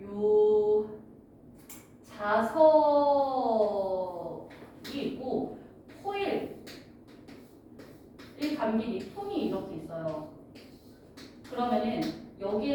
요 자석이 있고 코일 이 감긴 이 통이 이렇게 있어요. 그러면은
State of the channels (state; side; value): identical; both; correlation 1.00